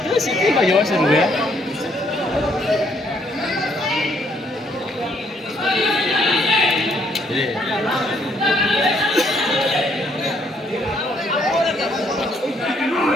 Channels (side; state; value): both; normal; correlation 0.69